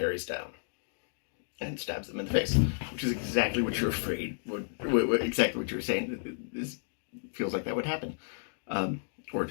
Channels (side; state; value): right; silent; digital silence